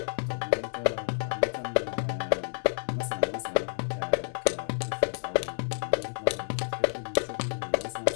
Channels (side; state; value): right; silent; 58 dB below the other